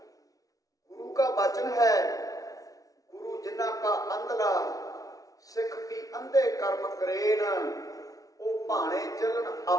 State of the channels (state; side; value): late; right; 0.17 ms